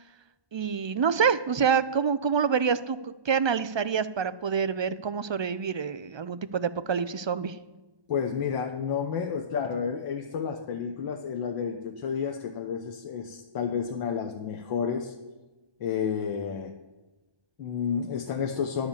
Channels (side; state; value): left; late; 1.2 ms